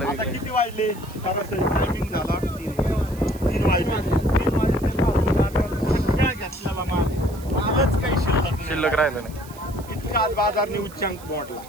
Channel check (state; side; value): noise; right; hiss, 20 dB below the sound